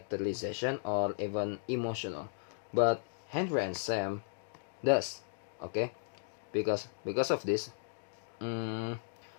or even emotional, but Henry and Sam does. Okay, because of this,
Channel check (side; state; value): right; silent; digital silence